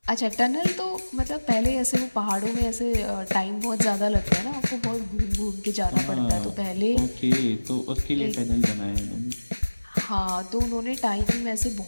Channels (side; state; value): both; inverted; correlation -1.00